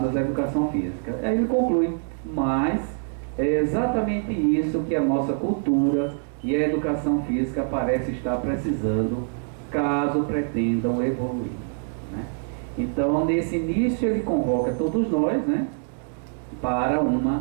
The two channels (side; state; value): left; silent; 62 dB below the other